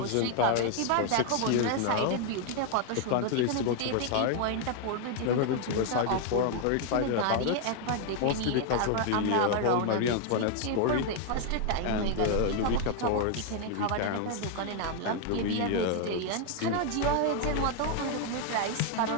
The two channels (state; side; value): different; both; correlation 0.00